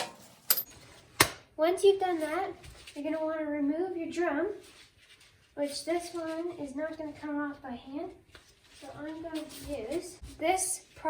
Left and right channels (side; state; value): both; identical; correlation 1.00